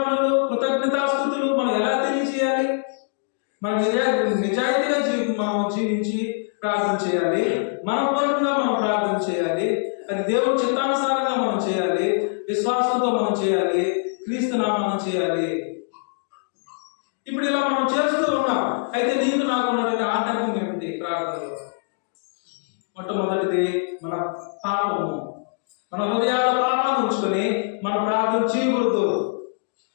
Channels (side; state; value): right; silent; digital silence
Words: కృతజ్ఞతాస్తుతులు మనం ఎలా తెలియజేయాలి? మనం నిజాయితీగా మనం జీవించి ప్రార్థన చేయాలి. మనపూర్వకంగా మనం ప్రార్థన చేయాలి. అది దేవుడి చిత్తానుసారంగా మనం చేయాలి. విశ్వాసంతో మనం చేయాలి. క్రీస్తు నామమున చేయాలి. ఇప్పుడు ఇలా మనం చేస్తూ ఉన్నాం. అయితే నీకు నాకు ఉన్నటువంటి ఆటంకం ఏమిటి ప్రార్థనలో? మొట్టమొదటిది మన పాపము. మన హృదయాల పాపాన్ని ఉంచుకొని మన ప్రార్థన చేయకూడదు.